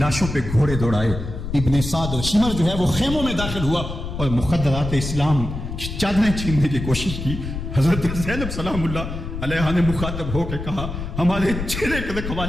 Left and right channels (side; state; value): left; noise; rumble, 6 dB below the sound